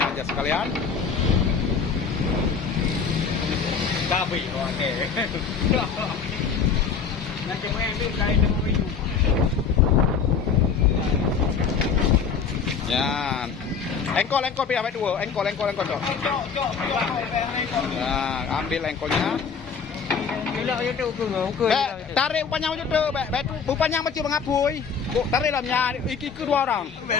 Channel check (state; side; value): quieter; right; 6.0 dB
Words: aja sekalian. Babi, oke. Ya, engkol pihak dua, engkol cok. Nah, ambil engkolnya. Tarik upanya macam tu, upanya macam mengapui. Tarik lamnya, iki kedua orang.